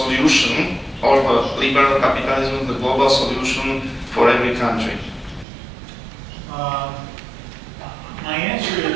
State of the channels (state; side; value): drops out; left; at 5.5 s